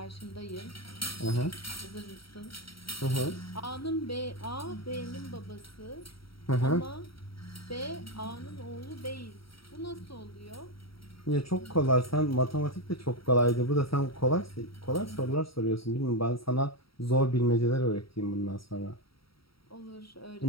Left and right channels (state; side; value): late; right; 0.75 ms